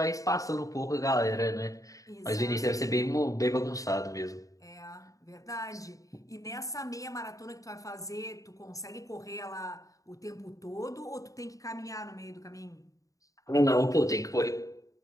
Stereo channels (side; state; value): right; late; 0.16 ms